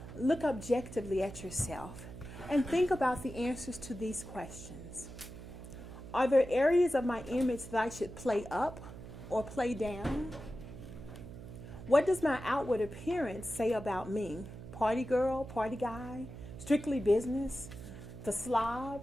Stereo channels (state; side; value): noise; right; hum, 13 dB below the sound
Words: look objectively at yourself and think about the answers to these questions. Are there areas of my image that I should play up or play down? What does my outward appearance say about me? Party girl, party guy, strictly business, the slob?